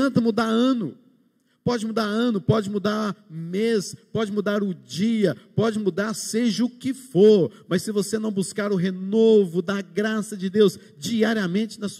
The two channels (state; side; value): identical; both; correlation 1.00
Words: mudar ano, Pode mudar ano, pode mudar mês, pode mudar o dia, pode mudar seja o que for, mas se você não buscar o renovo da graça de Deus diariamente na